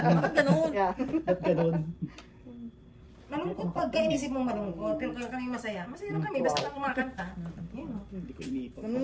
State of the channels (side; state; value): both; identical; correlation 1.00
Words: ganun? Yeah. Ba't ganun? Malungkot pag inisip mong malungkot. Pero kami masaya. Masaya lang kami. Basta lang kumakanta. Yun. Hindi ko iniipon. Ano